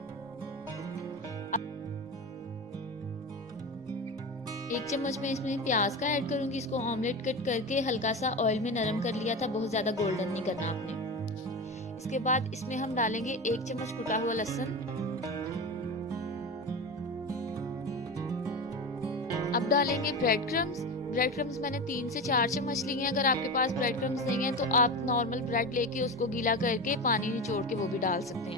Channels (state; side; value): normal; both; correlation 0.24